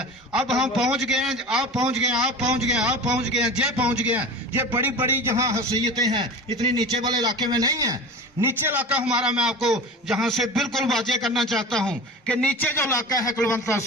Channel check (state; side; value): normal; both; correlation 0.33